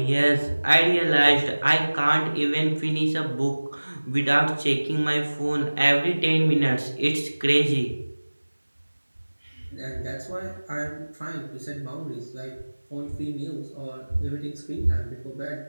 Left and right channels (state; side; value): inverted; both; correlation -1.00